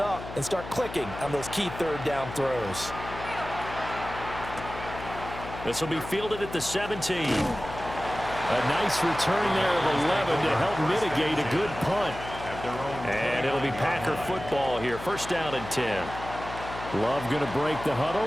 and start clicking on those key third down throws. This will be fielded at the 17. A nice return there of 11 to help mitigate a good punt. And it'll be Packer football here. First down and 10. Love going to break the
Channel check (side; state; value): left; noise; hum, 11 dB below the sound